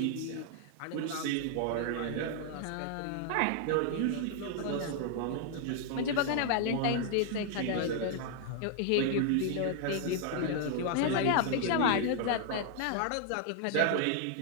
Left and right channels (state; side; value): different; both; correlation 0.00